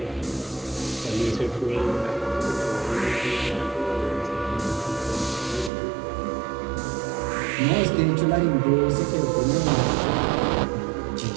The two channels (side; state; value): left; drops out; at 5.7 s